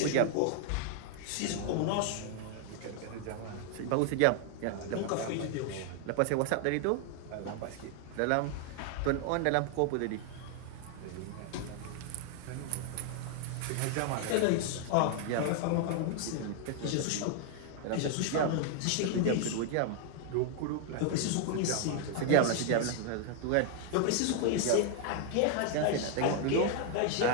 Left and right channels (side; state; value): both; different; correlation 0.00